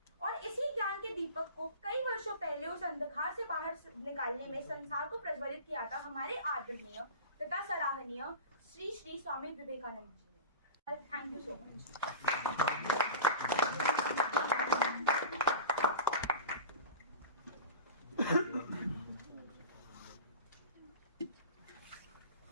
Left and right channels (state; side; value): inverted; both; correlation -0.32